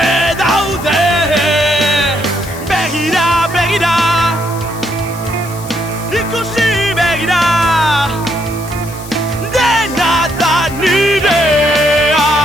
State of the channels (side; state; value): left; noise; hiss, 16 dB below the sound